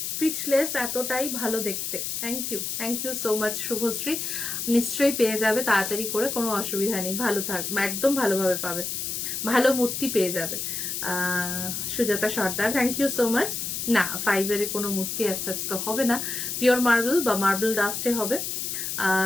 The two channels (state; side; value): noise; left; hiss, 3 dB below the sound